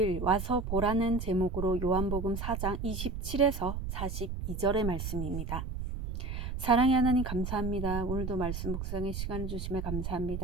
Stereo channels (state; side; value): noise; right; rumble, 4 dB below the sound